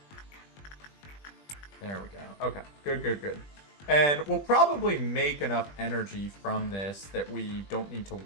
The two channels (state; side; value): late; right; 20 ms